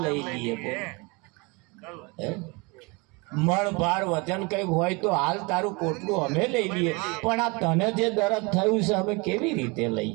લઈ લઈએ. મણ ભાર વજન કંઈક હોય તો હાલ તારું પોટલું અમે લઈ લઈએ, પણ આ તને જે દર્દ થયું છે અમે કેવી રીતે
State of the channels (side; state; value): left; quieter; 28.2 dB